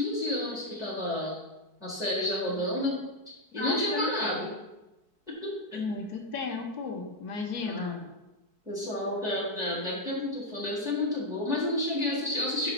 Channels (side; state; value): left; late; 4.6 ms